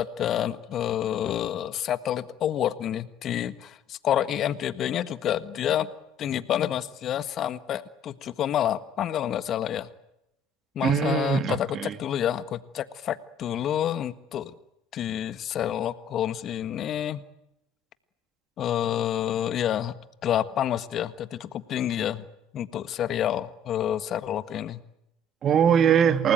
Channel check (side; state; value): right; quieter; 3.0 dB